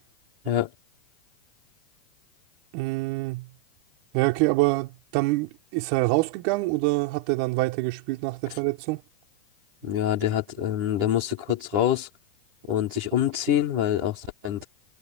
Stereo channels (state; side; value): late; left; 10 ms